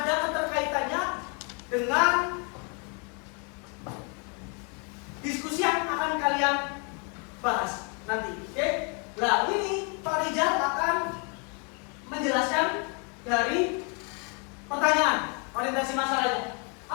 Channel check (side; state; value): right; quieter; 36.1 dB